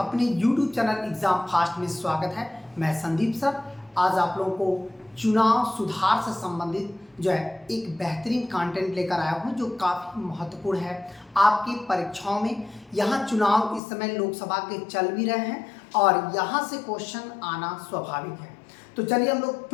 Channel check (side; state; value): right; drops out; at 13.8 s